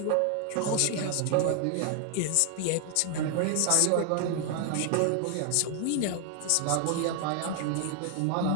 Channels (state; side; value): different; both; correlation 0.00